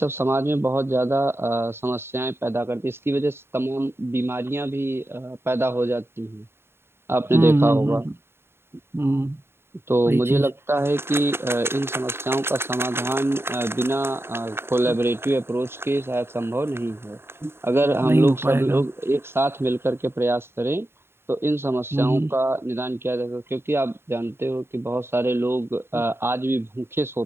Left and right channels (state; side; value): late; left; 0.11 ms